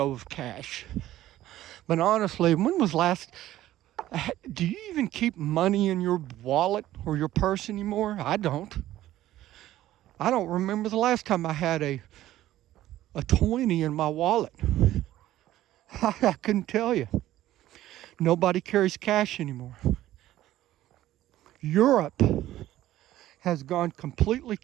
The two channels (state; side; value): quieter; left; 14.2 dB